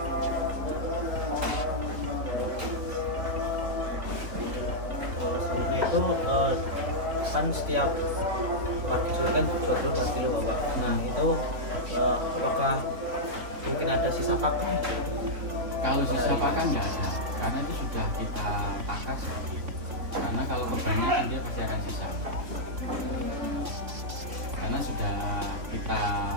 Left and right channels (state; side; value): late; left; 3.5 ms